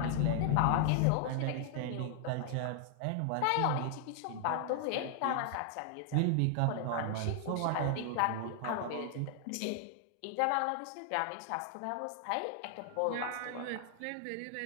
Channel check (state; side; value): different; both; correlation 0.00